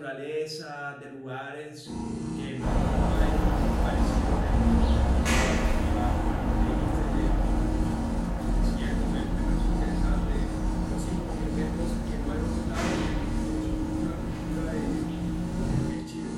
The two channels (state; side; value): identical; both; correlation 1.00